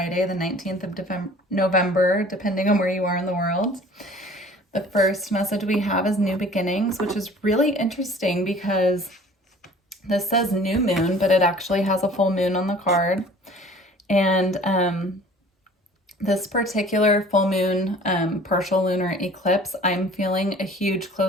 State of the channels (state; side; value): normal; both; correlation 0.48